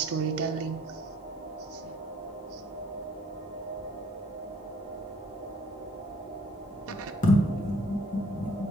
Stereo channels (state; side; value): normal; both; correlation 0.61